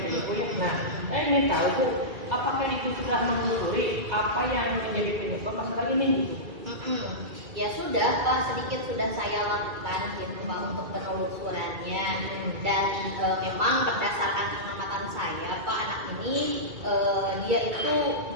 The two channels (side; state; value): left; late; 2.3 ms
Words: situ ya. Nah, saya ingin tahu Bu, apakah Ibu sudah menelusuri apa yang menjadi penyebab masalah ini gitu? Ya sudah Pak, sedikit sudah saya lakukan gitu Pak untuk penelusurannya. Dan memang berdasarkan pengamatan saya Pak, anak ini dia itu